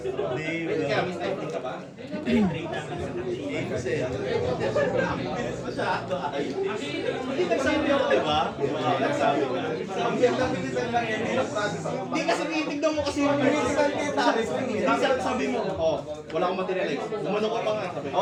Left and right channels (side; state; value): both; identical; correlation 1.00